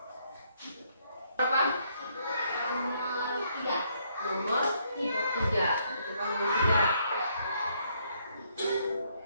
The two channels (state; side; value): inverted; both; correlation -0.71